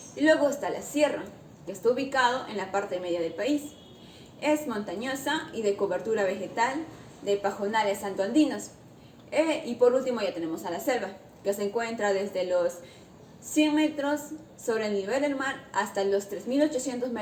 Y luego está la sierra, que está ubicado en la parte media del país. Es montañosa y de cobertura vegetal de pajonales santoandinos. Y por último ya tenemos a la selva, que se encuentra desde los 100 metros sobre el nivel del mar hasta los 3.800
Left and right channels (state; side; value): identical; both; correlation 1.00